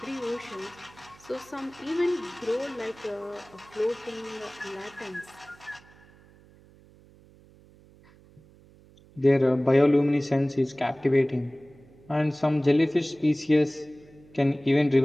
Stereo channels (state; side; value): noise; right; hum, 26 dB below the sound